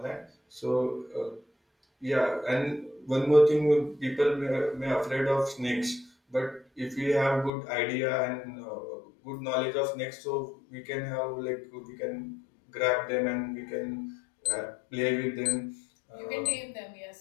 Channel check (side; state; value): right; drops out; at 7.5 s